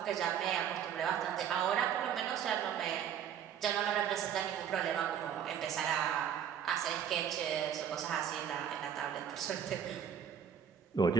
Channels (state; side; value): quieter; left; 8.9 dB